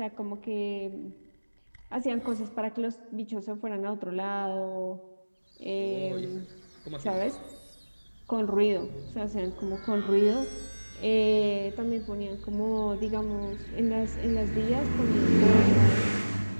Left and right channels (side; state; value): both; inverted; correlation -1.00